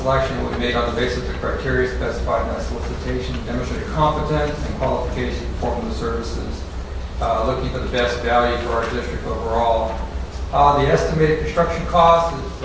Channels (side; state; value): both; identical; correlation 1.00